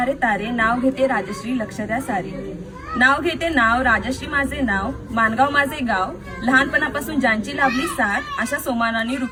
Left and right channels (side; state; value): both; identical; correlation 1.00